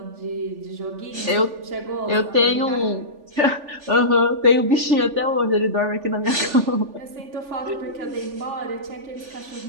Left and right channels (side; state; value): left; late; 3.4 ms